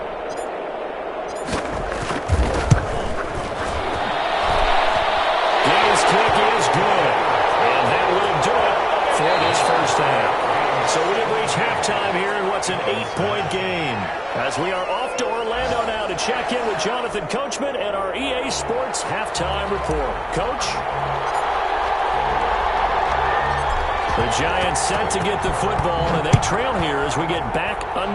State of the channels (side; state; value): both; identical; correlation 1.00